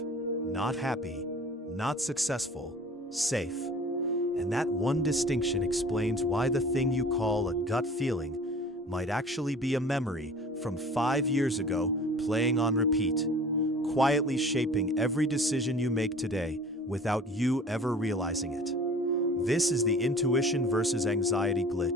not happy, not successful, safe. And that one distinction explains why the thing you call a gut feeling might actually be a memory from 5 years ago playing on repeat, quietly shaping every decision you make today without you ever realizing it. This is the intuition versus anxiety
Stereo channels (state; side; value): normal; both; correlation 0.45